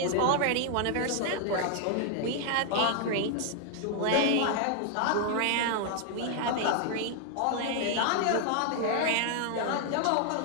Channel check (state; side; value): different; both; correlation 0.00